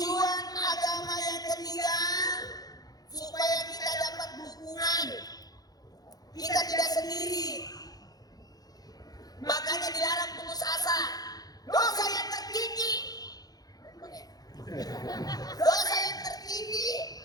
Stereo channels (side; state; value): right; late; 0.19 ms